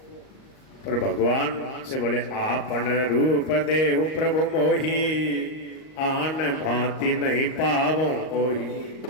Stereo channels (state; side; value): late; right; 38 ms